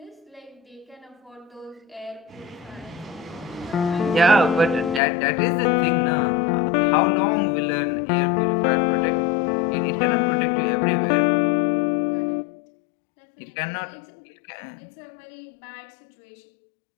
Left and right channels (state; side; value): drops out; right; at 5.0 s